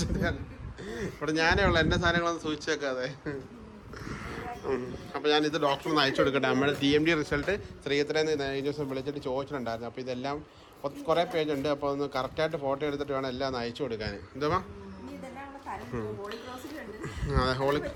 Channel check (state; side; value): identical; both; correlation 1.00